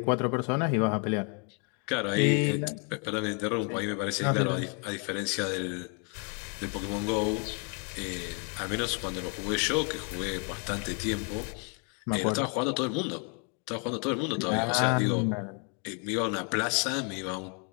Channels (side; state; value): right; quieter; 36.8 dB